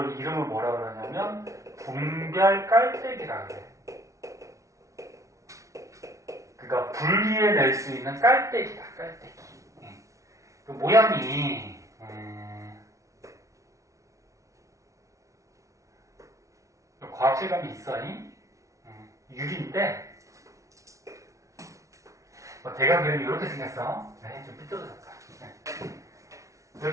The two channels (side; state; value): left; late; 0.15 ms